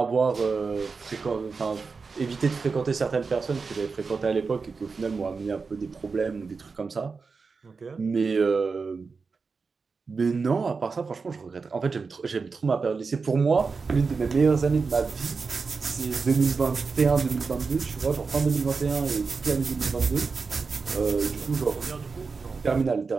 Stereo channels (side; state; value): left; quieter; 4.7 dB